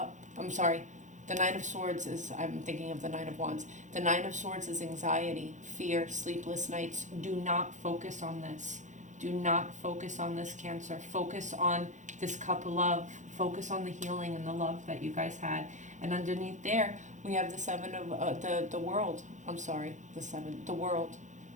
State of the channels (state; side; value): late; left; 0.35 ms